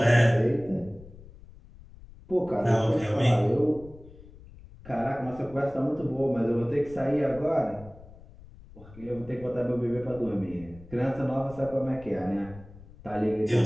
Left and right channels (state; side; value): noise; left; rumble, 20 dB below the sound